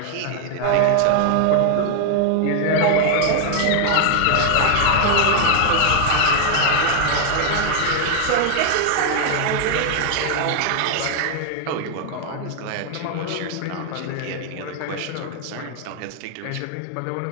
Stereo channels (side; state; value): both; different; correlation 0.00